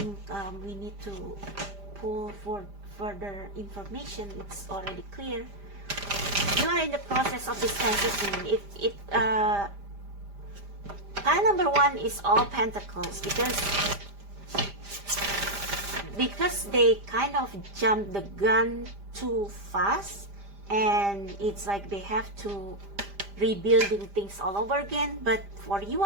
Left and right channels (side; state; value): left; late; 5.0 ms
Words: we need to pull for further information, it's already clear. You are in the process of this transition. Pile number 1 is all Pentacles, because they kind of jumped the gun too fast, and it's like they have to rebuilding things all over again. But for you,